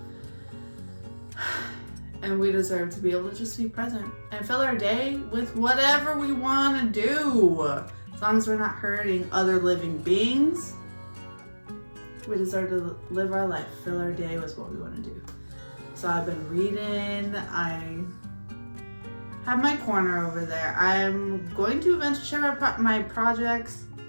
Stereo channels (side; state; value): both; inverted; correlation -1.00